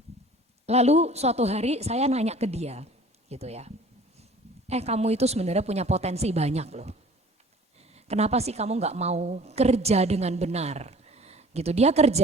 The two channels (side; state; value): both; normal; correlation 0.47